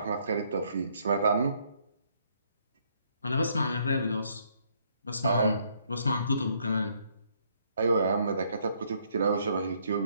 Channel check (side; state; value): both; inverted; correlation -0.69